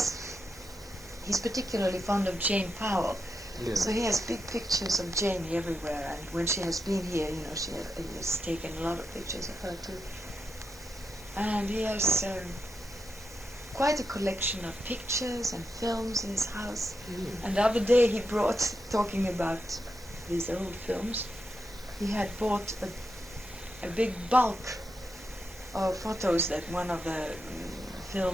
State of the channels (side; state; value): both; normal; correlation 0.86